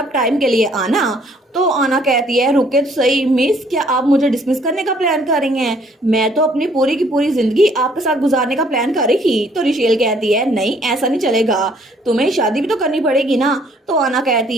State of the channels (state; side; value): normal; both; correlation 0.62